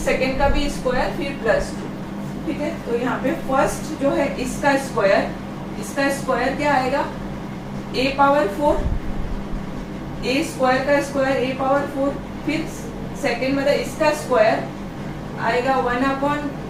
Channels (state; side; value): identical; both; correlation 1.00